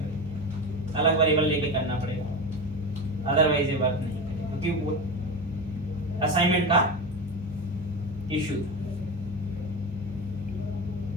अलग वेरिएबल लेके करना पड़ेगा, अदरवाइज ये वर्क नहीं करेगा, क्योंकि वो असाइनमेंट का इशू।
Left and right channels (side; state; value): both; normal; correlation 0.23